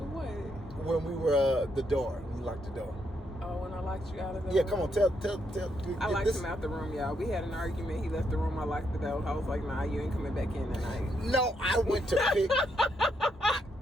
what? When we were the door, we locked the door. Oh, when I locked you out of the room? Yeah, come on, tell. I locked him out the room, y'all. We had an argument. He left the room. I locked the door. I was like, nah, you ain't coming back in tonight. No, I went to pick.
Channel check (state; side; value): normal; both; correlation 0.78